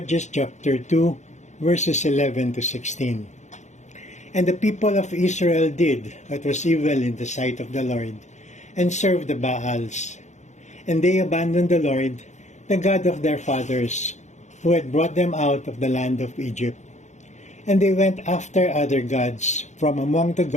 chapter 2, verses 11 to 16. And the people of Israel did what was evil in the sight of the Lord, and served the Baals. And they abandoned the Lord, the God of their fathers, who had brought them out of the land of Egypt. And they went after other gods from among the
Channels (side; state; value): right; late; 0.34 ms